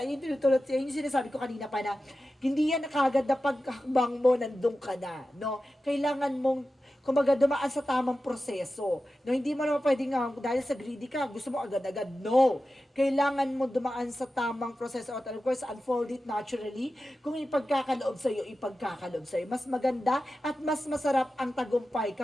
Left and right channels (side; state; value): both; normal; correlation 0.93